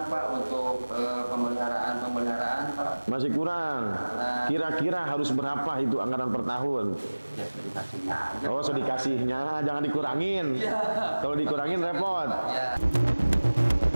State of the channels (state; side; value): inverted; both; correlation -1.00